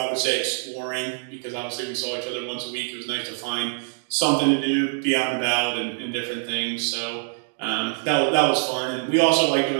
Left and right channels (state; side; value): silent; left; digital silence